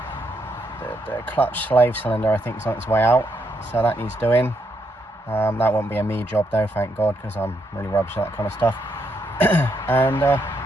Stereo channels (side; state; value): both; normal; correlation 0.77